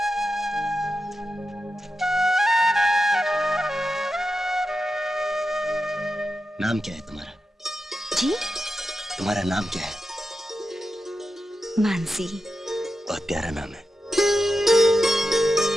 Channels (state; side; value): normal; both; correlation 0.90